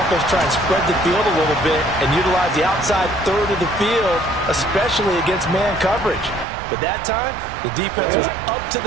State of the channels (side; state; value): left; drops out; at 6.5 s